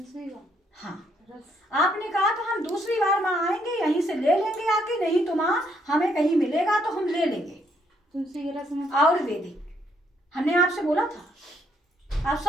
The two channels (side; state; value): both; normal; correlation 0.71